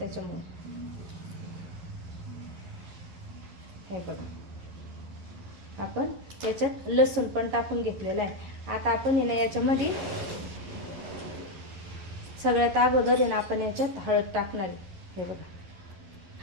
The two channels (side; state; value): left; late; 11 ms